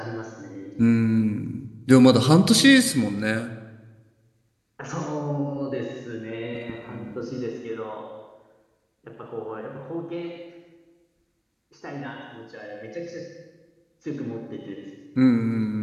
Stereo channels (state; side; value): identical; both; correlation 1.00